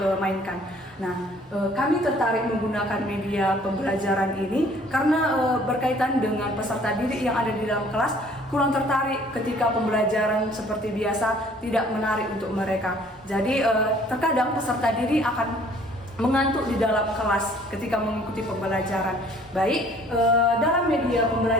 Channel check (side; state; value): both; normal; correlation 0.56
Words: Nah, kami tertarik menggunakan media pembelajaran ini karena berkaitan dengan peserta didik yang ada di dalam kelas kurang tertarik ketika pembelajaran seperti biasa, tidak menarik untuk mereka. Jadi terkadang peserta didik akan mengantuk di dalam kelas ketika mengikuti pembelajaran. Baik, dalam media